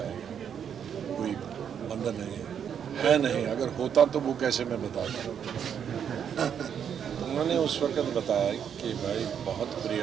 कोई बंधन नहीं है नहीं। अगर होता तो वो कैसे मैं बताता। उन्होंने उस वक्त बताया कि भाई बहुत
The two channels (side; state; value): left; quieter; 8.2 dB